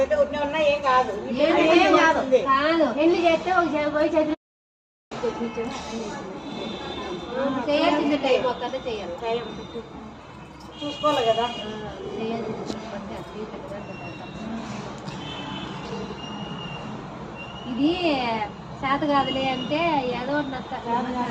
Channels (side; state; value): both; identical; correlation 1.00